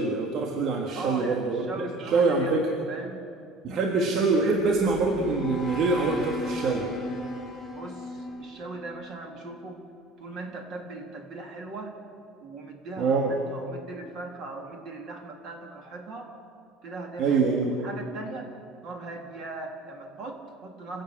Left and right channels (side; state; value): left; quieter; 3.1 dB